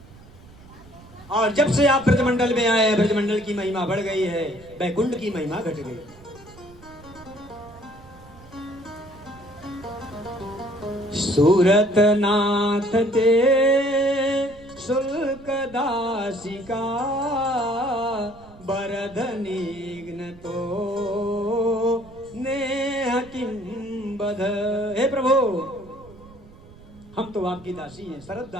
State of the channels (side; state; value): right; noise; rumble, 21 dB below the sound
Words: और जब से आप ब्रजमंडल में आए, ब्रजमंडल की महिमा बढ़ गई है, बैकुंठ की महिमा घट गई। सूरत नाथ ते शुल्क दासिका बरधनिग्न तो नेह किम बध। हे प्रभु, हम तो आपकी दासी हैं, शरद